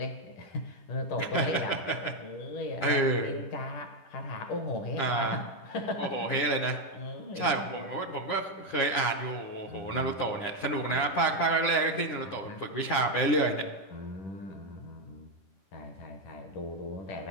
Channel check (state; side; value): late; right; 10 ms